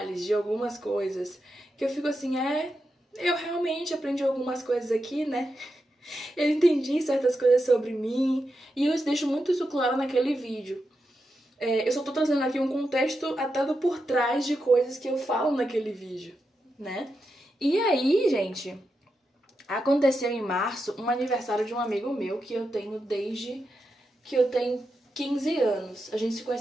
de algumas coisas. Que eu fico assim, eu realmente aprendi algumas coisas aqui, né? Eu entendi certas coisas sobre mim. E eu deixo muito isso claro naquele vídeo. Eu só tô trazendo aqui um contexto até do por trás de coisas que eu falo naquele vídeo, né? E aí, gente, aconteceu em março um aniversário de um amigo meu que eu tenho desde que eu tenho 15 anos. A gente se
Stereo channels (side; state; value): both; normal; correlation 0.87